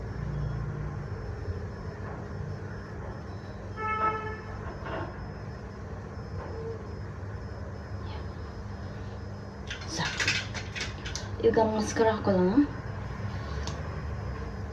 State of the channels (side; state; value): both; identical; correlation 1.00